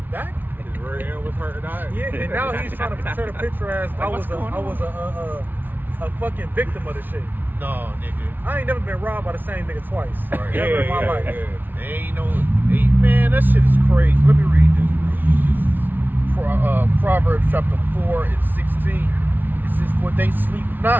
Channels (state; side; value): late; left; 0.089 ms